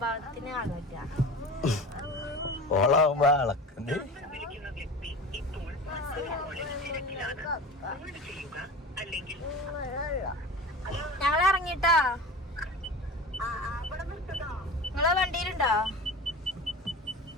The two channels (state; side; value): normal; both; correlation 0.33